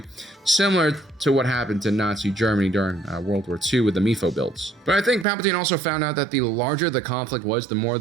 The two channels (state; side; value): drops out; left; at 5.2 s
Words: similar to what happened to Nazi Germany during World War II with the MIFO builds. But I think Palpatine also found out that the larger the conflict was, the more